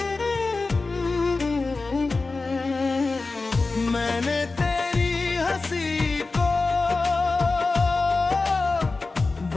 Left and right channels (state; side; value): quieter; right; 3.7 dB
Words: मैंने तेरी हंसी को